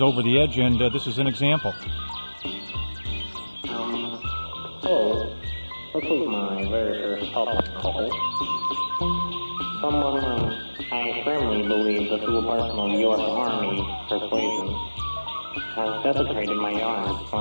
Over the Edge, and this is an example. Hello. This is my very first public call. Someone I firmly believe that through a personal U.S. Army persuasion has desecrated my yard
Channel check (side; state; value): both; inverted; correlation -1.00